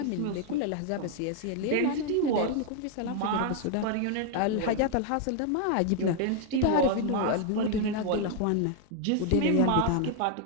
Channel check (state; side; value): different; both; correlation 0.00